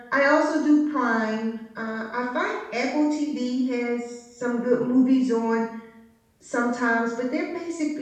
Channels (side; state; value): both; identical; correlation 1.00